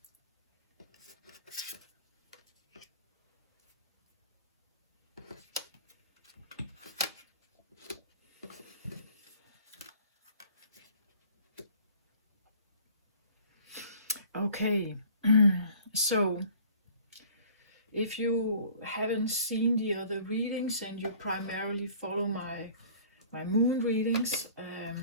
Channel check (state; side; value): inverted; both; correlation -0.50